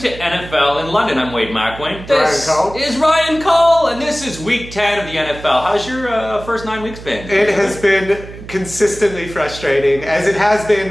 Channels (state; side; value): noise; right; hum, 14 dB below the sound